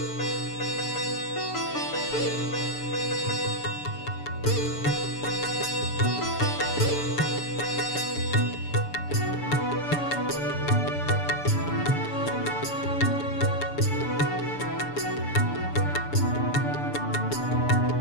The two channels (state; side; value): late; right; 6.9 ms